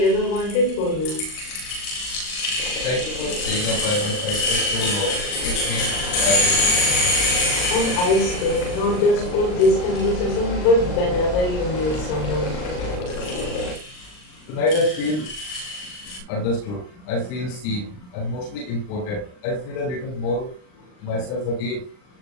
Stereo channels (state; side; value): late; right; 39 ms